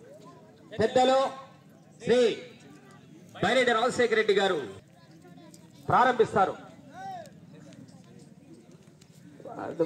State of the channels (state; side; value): identical; both; correlation 1.00